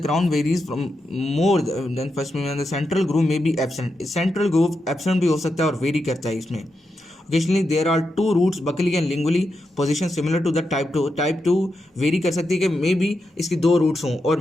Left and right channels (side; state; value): both; normal; correlation 0.86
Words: crown varies from more than first premolar. The central groove may be absent, central groove absent भी हो सकता है और वेरी करता है इसमें। Occasionally there are 2 roots buccally and lingually, position similar to the type 2। Type 2 vary कर सकती है कि मे बी इसकी 2 रूट्स हों और